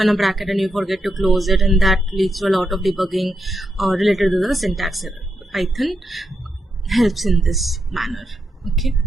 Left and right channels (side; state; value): both; normal; correlation 0.83